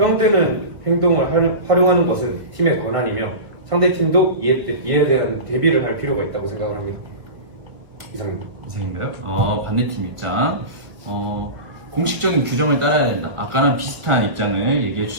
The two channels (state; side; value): late; left; 1.5 ms